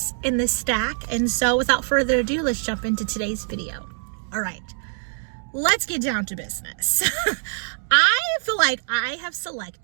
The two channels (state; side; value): silent; left; digital silence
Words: in this stack? And so without further ado, let's jump into today's video. All right, let's get down to business. I feel like I have